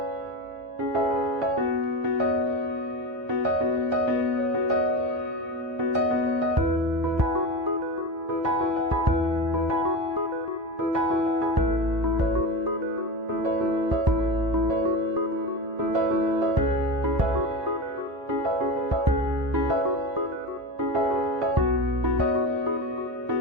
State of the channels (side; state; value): left; late; 1.0 ms